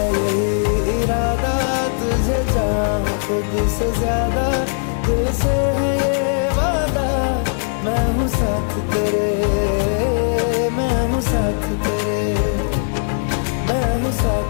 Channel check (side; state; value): right; silent; digital silence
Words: यही इरादा तुझे चाहूं खुद से ज्यादा, दिल से है ये वादा, मैं हूँ साथ तेरे, मैं हूँ साथ तेरे, मैं हूँ